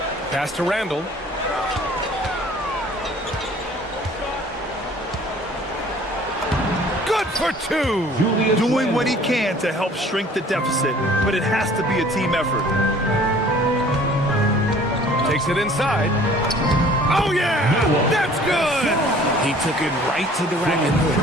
Pass to Randall. For 2. Doing what he can to help shrink the deficit, but it has to be a team effort. Takes it inside. Oh, yeah! That's good! He took it right to the rack, and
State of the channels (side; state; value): both; normal; correlation 0.52